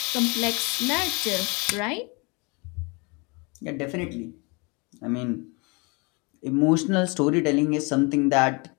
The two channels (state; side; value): quieter; right; 29.9 dB